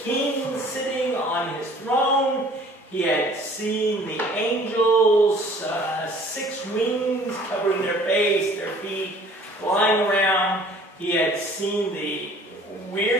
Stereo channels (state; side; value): normal; both; correlation 0.52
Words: king sitting on his throne. He had seen the angels, 6 wings covering their face, their feet, flying around. He had seen the